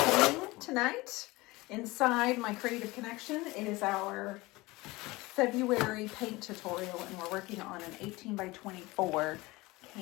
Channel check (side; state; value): right; quieter; 21.5 dB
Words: tonight inside my Creative Connection. It is our February paint tutorial, and we're working on an 18 by 24